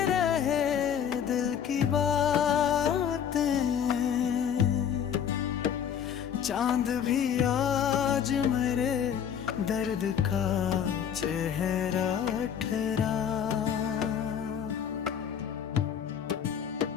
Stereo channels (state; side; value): quieter; right; 8.4 dB